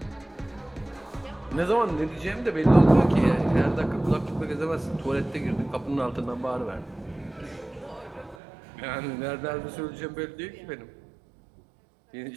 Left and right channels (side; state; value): left; drops out; at 8.3 s